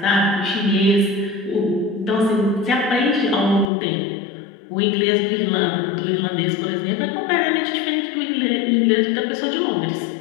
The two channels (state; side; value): drops out; right; at 3.7 s